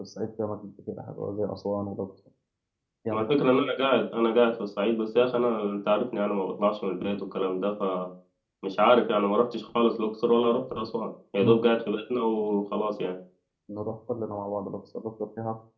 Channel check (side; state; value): both; identical; correlation 1.00